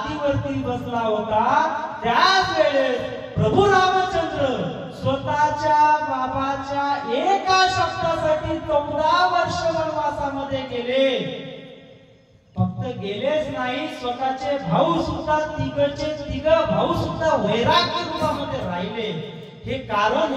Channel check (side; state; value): both; identical; correlation 1.00